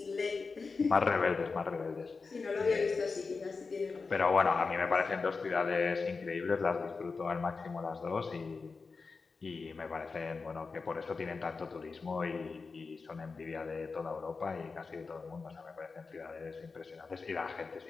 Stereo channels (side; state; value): right; quieter; 4.5 dB